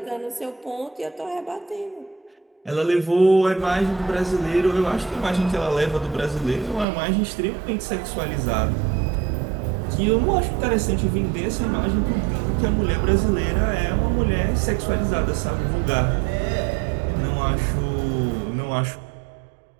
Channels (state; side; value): drops out; left; at 6.9 s